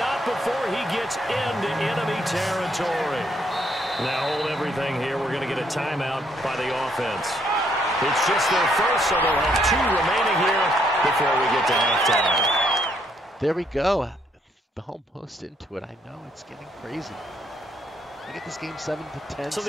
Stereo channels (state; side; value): normal; both; correlation 0.71